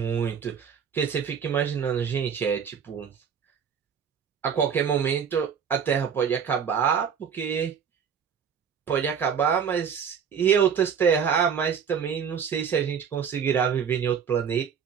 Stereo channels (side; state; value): left; quieter; 7.3 dB